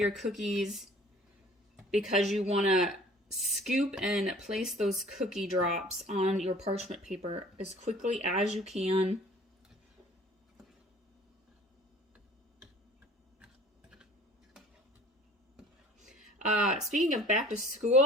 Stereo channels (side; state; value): both; normal; correlation 0.50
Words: cookies, because you want to scoop and place those cookie drops on your parchment paper as quickly as you can. Speaking of back to